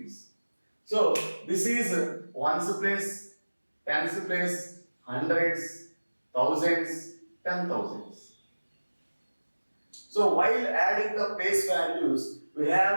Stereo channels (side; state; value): both; inverted; correlation -1.00